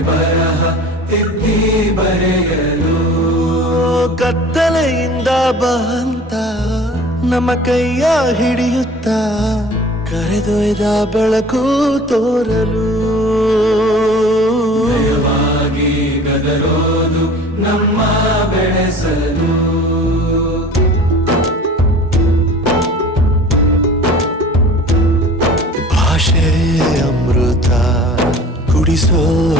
ಬರಹ ತಿದ್ದಿ ಬರೆಯಲು ಕತ್ತಲೆಯಿಂದ ಬಂತ ನಮ್ಮ ಕೈಯ ಹಿಡಿಯುತ್ತ ಕರೆದೊಯ್ದ ಬೆಳಕು ತೋರಲು ಭಯವಾಗಿ ಗದರೋದು ನಮ್ಮ ಬೆಳೆಸಲು ಭಾಷೆ ಅಮೃತ ಕುಡಿಸೋ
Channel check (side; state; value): both; normal; correlation 0.44